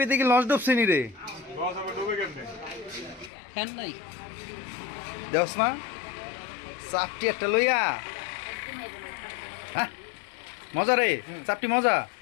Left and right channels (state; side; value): drops out; right; at 3.3 s